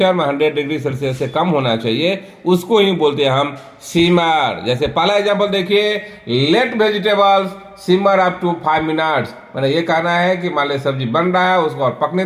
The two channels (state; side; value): identical; both; correlation 1.00